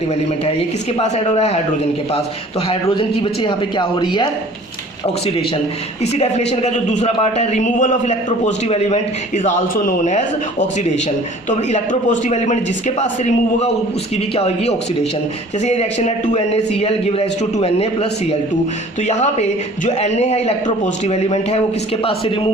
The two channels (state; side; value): normal; both; correlation 0.49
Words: एलिमेंट है। ये किसके पास ऐड हो रहा है? हाइड्रोजन के पास। तो हाइड्रोजन की बच्चे यहाँ पे क्या हो रही है? ऑक्सीडेशन। इसी डेफिनेशन का जो दूसरा पार्ट है, removal of electropositive element is also known as oxidation. तो इलेक्ट्रोपॉजिटिव एलिमेंट जिसके पास से रिमूव होगा उसकी भी क्या होगी? ऑक्सीडेशन। जैसे ये रिएक्शन है 2NaCl give rise to 2Na plus Cl2, तो यहाँ पे जो Na है इलेक्ट्रोपॉजिटिव एलिमेंट है वो किसके पास से